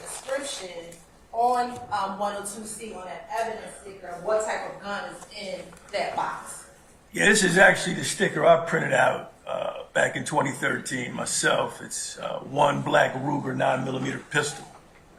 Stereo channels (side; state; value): both; identical; correlation 1.00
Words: description on 102C on that evidence sticker, what type of gun is in that box? Yeah, this is actually the sticker I printed out back in 2013 myself. It's one black Ruger 9mm pistol.